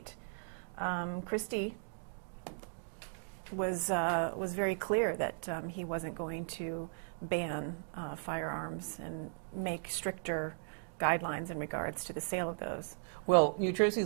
Christie was very clear that he wasn't going to ban firearms and make stricter guidelines in regards to the sale of those. Well, New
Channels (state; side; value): silent; left; digital silence